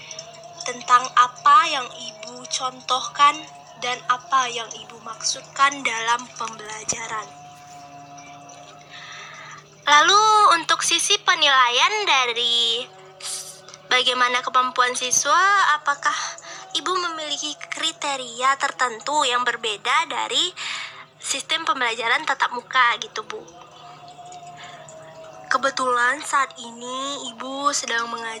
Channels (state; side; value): identical; both; correlation 1.00